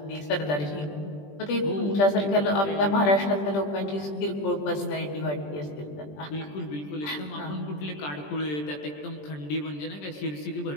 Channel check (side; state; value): right; late; 20 ms